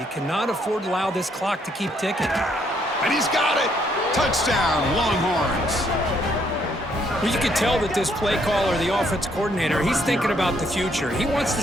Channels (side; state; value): both; normal; correlation 0.70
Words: cannot afford to allow this clock to keep ticking. And he's got it. Touchdown, Longhorns. Well, you can tell that this play caller, the offense coordinator, he's thinking about the future. He wants to